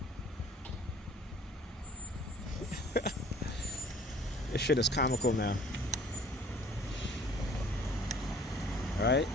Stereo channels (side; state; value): both; normal; correlation 0.52